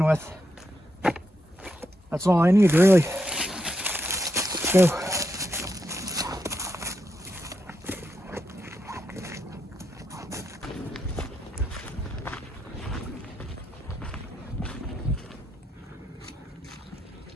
with. That's all I need, really. Let's go.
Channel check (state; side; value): normal; both; correlation 0.83